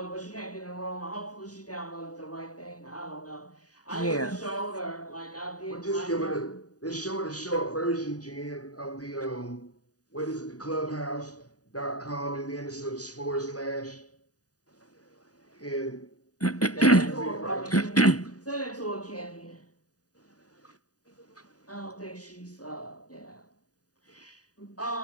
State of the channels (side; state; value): right; late; 0.68 ms